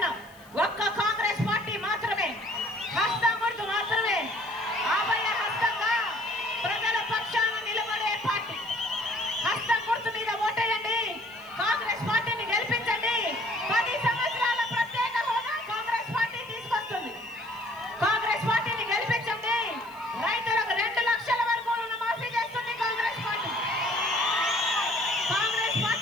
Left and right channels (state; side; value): noise; left; hiss, 27 dB below the sound